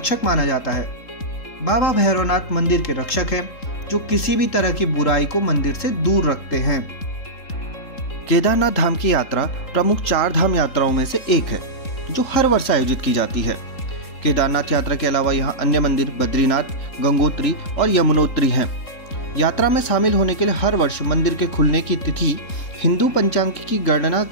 माना जाता है। बाबा भैरवनाथ मंदिर के रक्षक हैं, जो किसी भी तरह की बुराई को मंदिर से दूर रखते हैं। केदारनाथ धाम की यात्रा प्रमुख 4 धाम यात्राओं में से एक है, जो हर वर्ष आयोजित की जाती है। केदारनाथ यात्रा के अलावा यहाँ अन्य मंदिर बद्रीनाथ, गंगोत्री और यमुनोत्री हैं। यात्रा में शामिल होने के लिए हर वर्ष मंदिर के खुलने की तिथि हिंदू पंचांग की गणना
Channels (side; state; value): right; late; 3.7 ms